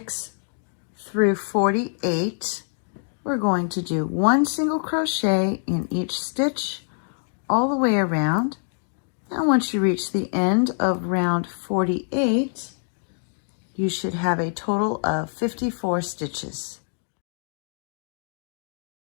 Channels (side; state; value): right; silent; 62 dB below the other